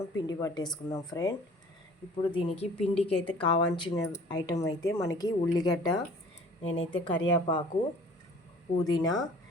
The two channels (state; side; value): normal; both; correlation 0.50